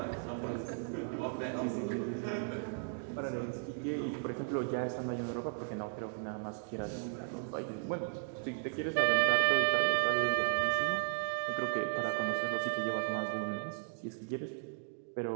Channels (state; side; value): silent; left; digital silence